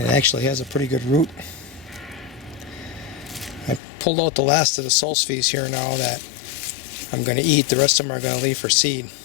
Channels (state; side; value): drops out; right; at 3.8 s